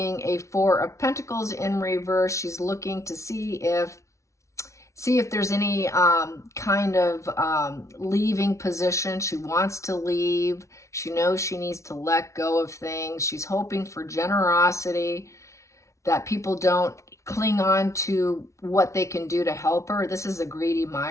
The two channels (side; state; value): right; late; 0.14 ms